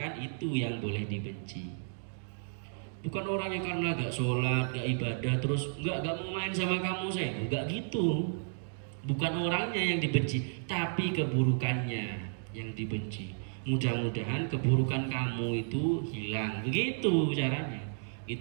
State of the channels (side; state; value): left; silent; digital silence